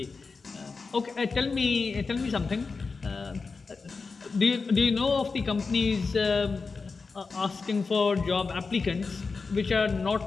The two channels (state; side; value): quieter; right; 4.5 dB